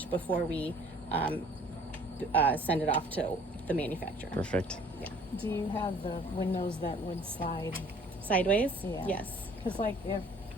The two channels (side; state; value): both; normal; correlation 0.54